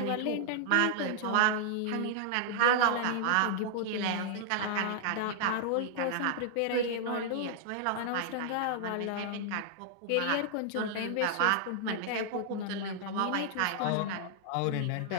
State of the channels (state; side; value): different; both; correlation -0.01